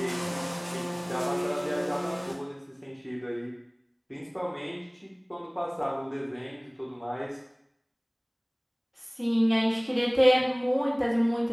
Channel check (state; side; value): identical; both; correlation 1.00